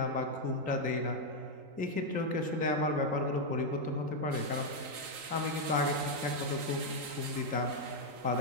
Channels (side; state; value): left; late; 3.9 ms